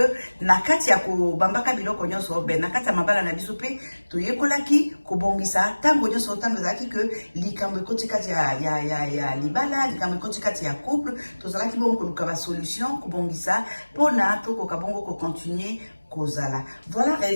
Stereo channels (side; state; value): both; inverted; correlation -1.00